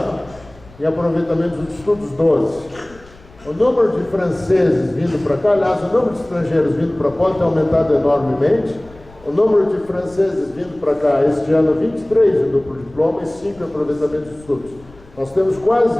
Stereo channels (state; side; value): noise; left; rumble, 24 dB below the sound